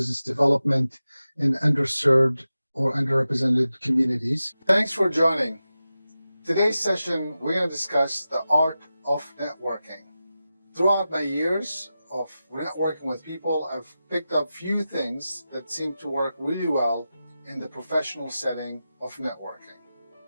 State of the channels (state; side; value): inverted; both; correlation -0.93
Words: development in underserved or underrepresented communities. Thanks for joining. Today's session, we're going to discuss the art of networking. Throughout my years of networking with people, I've picked up few things that seem to work really well in the professional setting of networking.